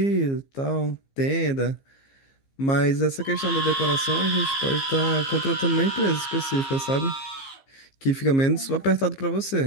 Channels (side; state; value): right; late; 15 ms